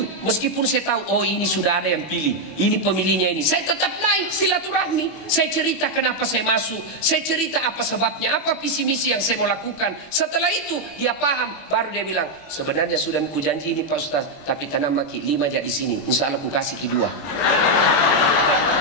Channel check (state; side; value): late; right; 21 ms